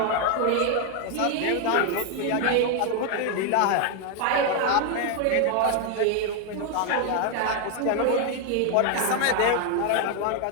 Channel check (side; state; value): both; different; correlation 0.01